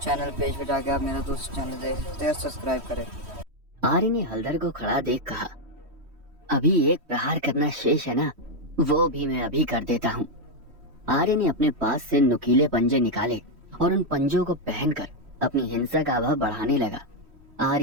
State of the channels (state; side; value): late; left; 3.1 ms